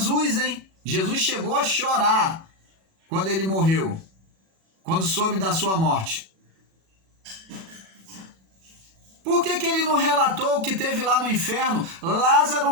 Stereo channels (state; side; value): late; left; 37 ms